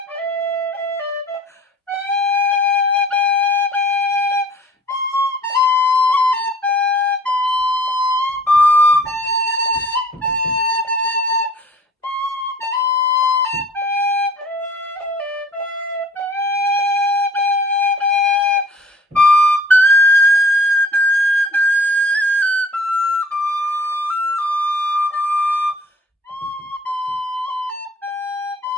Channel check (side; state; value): both; normal; correlation 0.53